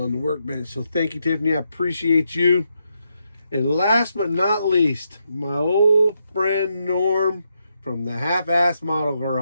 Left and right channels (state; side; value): inverted; both; correlation -0.81